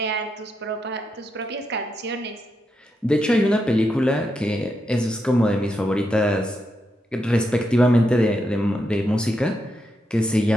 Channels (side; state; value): both; normal; correlation 0.83